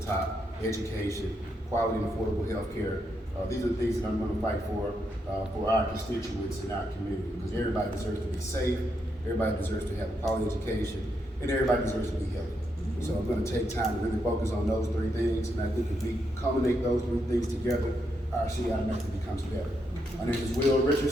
top, education, quality and affordable health care. These are the things that I'm going to fight for our constituents in our community, because everybody deserves to be safe, everybody deserves to have a quality education, and everybody deserves to be healthy. So I'm going to take time to really focus on those three things, and I think if we culminate those three things together, our city automatically becomes better. My name is Will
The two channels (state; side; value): normal; both; correlation 0.80